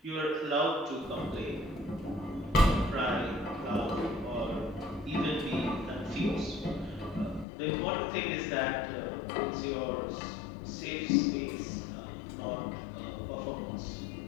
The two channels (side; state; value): right; drops out; at 7.5 s